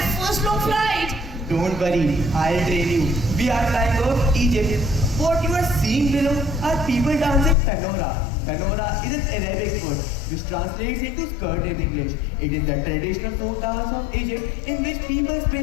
first long flight. Don't worry, I'll train you. We are flying over Egypt. What you are seeing below are people dancing Tanora. Tanora is an Arabic word which translates into skirt in English. It is the traditional folk dance of Egypt in which people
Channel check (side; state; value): right; drops out; at 7.6 s